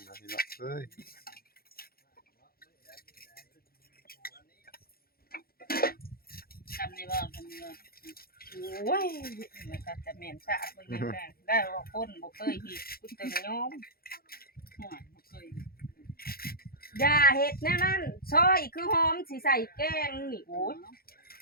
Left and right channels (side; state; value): right; late; 0.44 ms